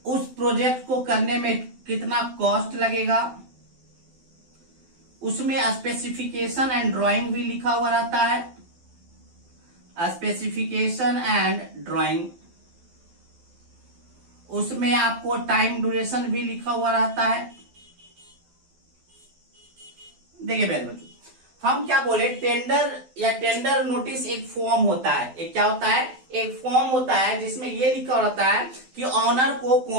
उस प्रोजेक्ट को करने में कितना कॉस्ट लगेगा, उसमें स्पेसिफिकेशन एंड ड्राइंग भी लिखा हुआ रहता है, स्पेसिफिकेशन एंड ड्राइंग। उसमें आपको टाइम ड्यूरेशन भी लिखा हुआ रहता है। देखिए मेरे बच्चों, हम क्या बोले, टेंडर या टेंडर नोटिस एक फॉर्म होता है। एक क्या होता है? एक फॉर्म होता है जिसमें ये लिखा रहता है कि ऑनर को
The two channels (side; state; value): left; late; 12 ms